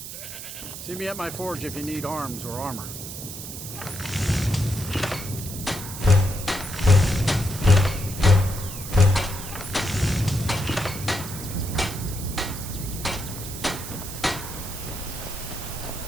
See me at my forge if you need arms or armor.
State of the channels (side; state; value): right; noise; hiss, 9 dB below the sound